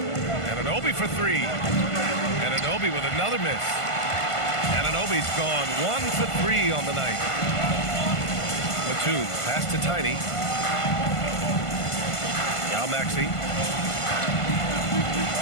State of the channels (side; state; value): right; late; 1.5 ms